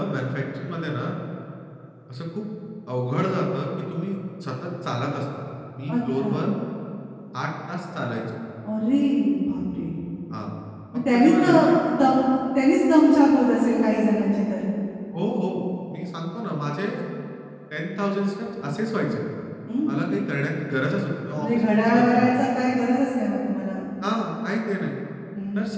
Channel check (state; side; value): identical; both; correlation 1.00